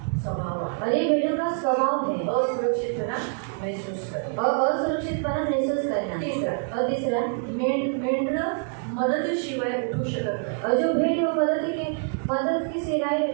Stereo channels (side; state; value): left; silent; 57 dB below the other